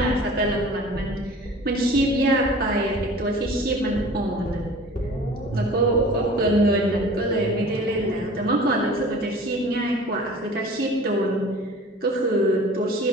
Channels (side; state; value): both; normal; correlation 0.44